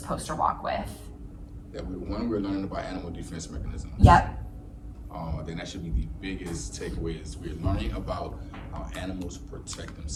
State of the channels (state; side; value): identical; both; correlation 1.00